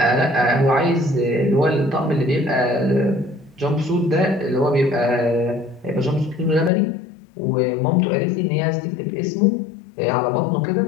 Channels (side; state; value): right; drops out; at 6.7 s